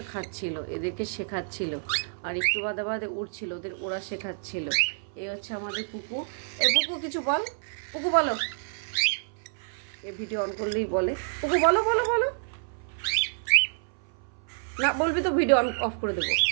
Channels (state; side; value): silent; left; 57 dB below the other